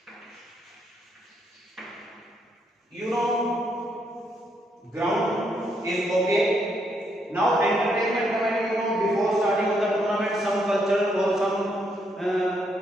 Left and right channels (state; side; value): normal; both; correlation 0.75